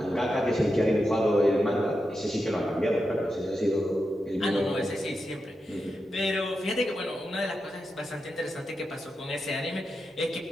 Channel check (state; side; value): normal; both; correlation 0.88